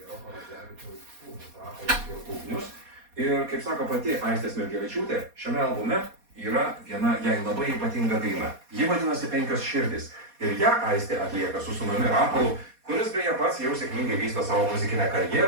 Roko Radzevičiaus sūnus Rapolas ir Ugnius. Ir, kaip sako pati Aistė Smilgevičiūtė, šiame albume yra viena jai labai ypatinga daina. Ji vadinasi 5 širdys. Ir ją Aistė atlieka su sūnumi Rapolu, kuris beje pats jau sėkmingai vysto savo muzikinę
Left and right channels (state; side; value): late; left; 4.2 ms